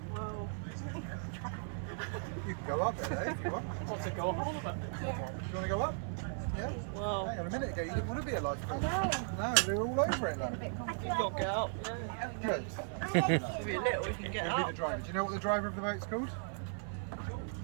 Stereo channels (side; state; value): left; silent; 53 dB below the other